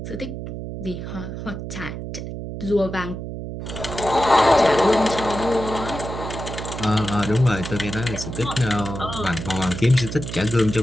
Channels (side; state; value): right; noise; hum, 7 dB below the sound